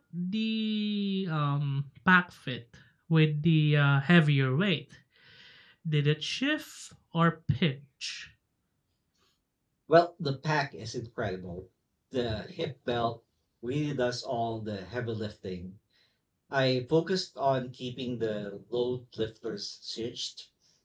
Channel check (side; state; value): both; identical; correlation 1.00